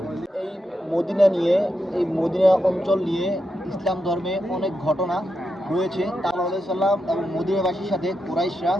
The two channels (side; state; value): both; normal; correlation 0.85